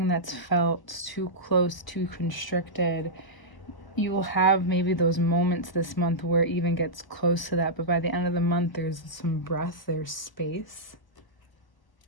that's felt too close, too constricted, you will have maybe those moments this month where it even gets close to that, but by the end of the month there's some breath, there's space.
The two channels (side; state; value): right; late; 1.0 ms